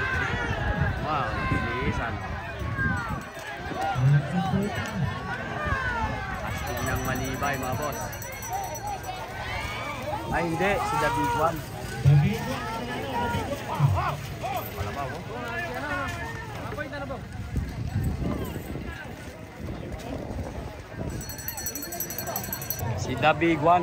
Wow, bilisan. Astig ng Malibay, mga boss. Ay, hindi. Si The Big One. Malabaw, oh. Si The Big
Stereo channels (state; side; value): identical; both; correlation 1.00